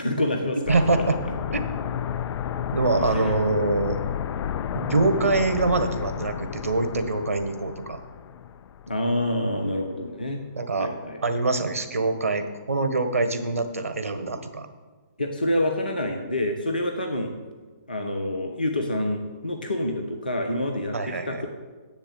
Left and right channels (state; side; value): inverted; both; correlation -0.65